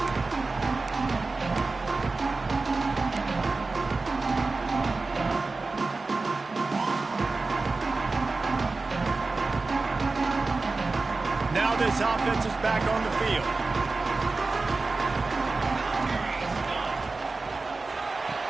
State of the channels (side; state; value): left; quieter; 3.7 dB